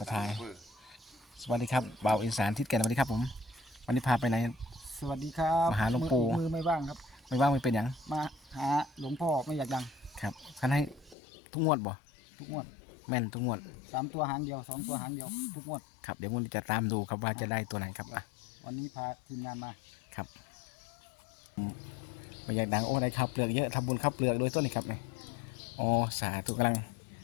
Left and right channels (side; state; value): right; drops out; at 11.2 s